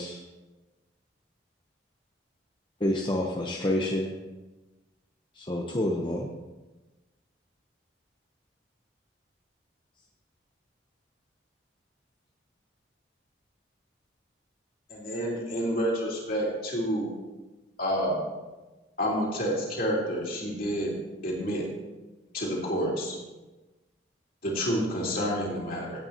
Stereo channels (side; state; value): both; normal; correlation 0.43